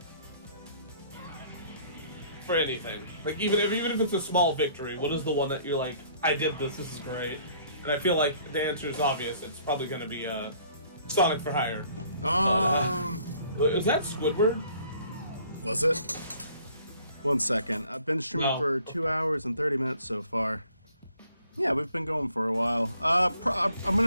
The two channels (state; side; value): inverted; both; correlation -0.58